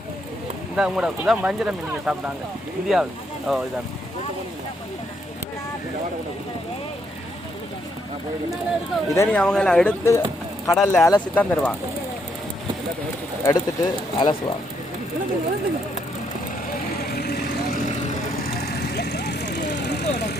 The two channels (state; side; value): normal; both; correlation 0.74